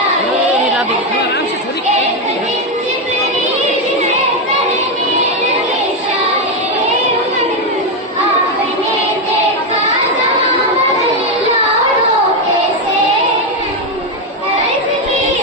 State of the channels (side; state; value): both; normal; correlation 0.06